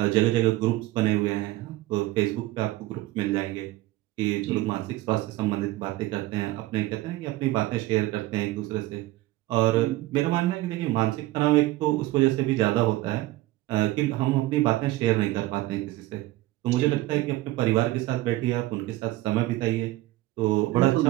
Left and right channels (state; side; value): quieter; left; 17.4 dB